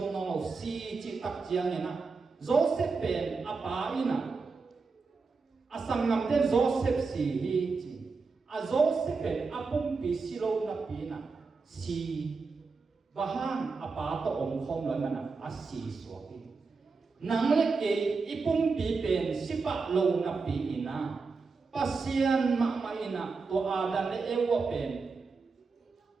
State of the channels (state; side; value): quieter; left; 4.5 dB